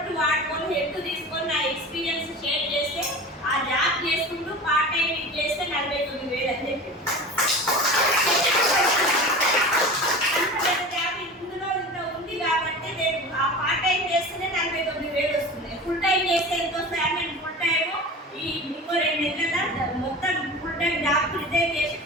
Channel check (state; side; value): normal; both; correlation 0.34